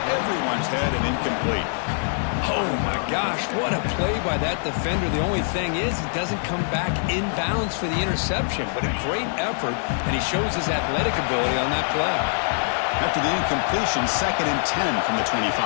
everyone's head and incomplete. Oh, my gosh, what a play by that defender. The only thing is he doesn't come back inbounds for the interception, but a great effort, and he shows his athletic ability on that play. After the incompletion, 2nd and 10 from the 25.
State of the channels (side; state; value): right; silent; digital silence